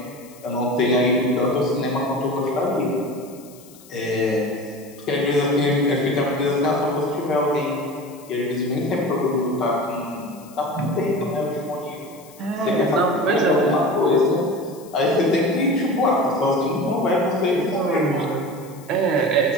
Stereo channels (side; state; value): left; noise; hiss, 23 dB below the sound